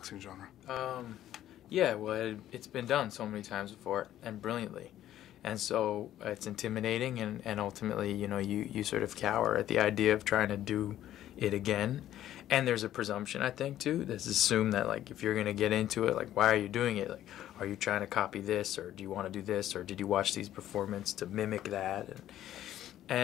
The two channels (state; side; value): quieter; right; 12.5 dB